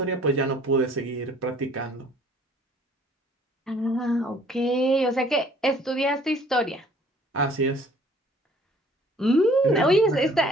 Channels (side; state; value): both; normal; correlation 0.56